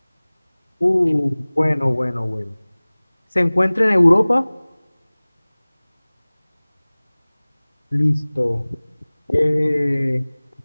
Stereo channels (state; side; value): inverted; both; correlation -1.00